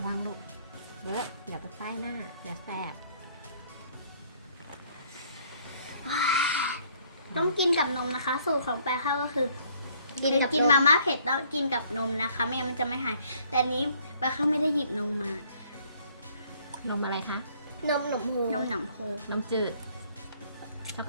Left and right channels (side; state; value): both; inverted; correlation -0.62